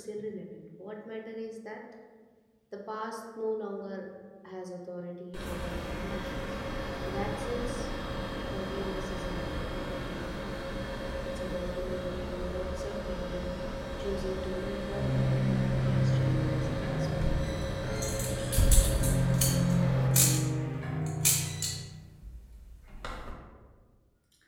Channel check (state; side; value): identical; both; correlation 1.00